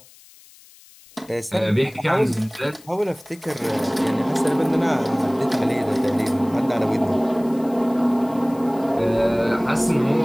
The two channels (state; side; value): noise; left; hiss, 25 dB below the sound